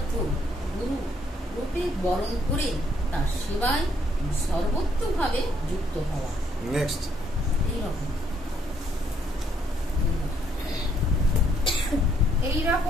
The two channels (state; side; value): normal; both; correlation 0.70